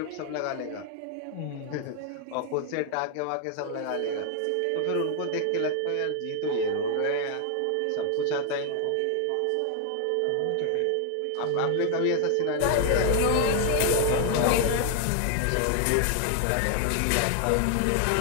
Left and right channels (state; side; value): different; both; correlation 0.00